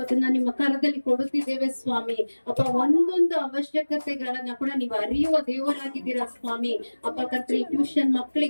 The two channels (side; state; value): both; inverted; correlation -1.00